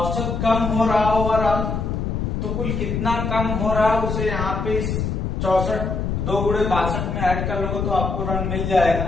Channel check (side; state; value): left; noise; rumble, 2 dB below the sound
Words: कम हो रहा ओवरऑल, तो कुल कितना कम हो रहा है उसे यहाँ पे 64 2 गुणे 62 में ऐड कर लोगे तो आपको रन मिल जाएगा।